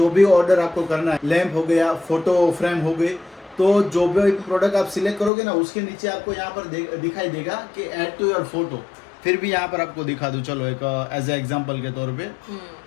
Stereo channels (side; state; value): right; drops out; at 5.3 s